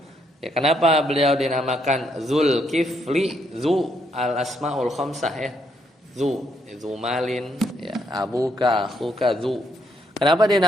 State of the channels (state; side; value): normal; both; correlation 0.74